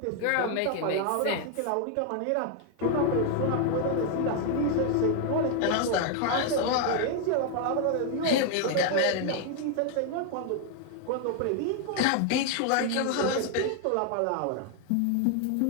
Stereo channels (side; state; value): both; different; correlation 0.00